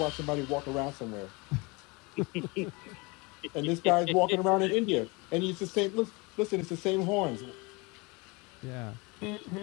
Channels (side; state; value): right; quieter; 27.0 dB